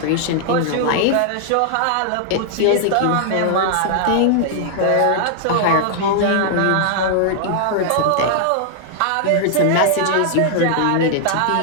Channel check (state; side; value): different; both; correlation -0.01